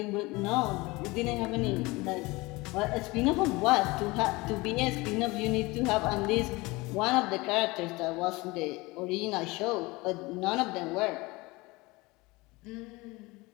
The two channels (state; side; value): quieter; right; 23.0 dB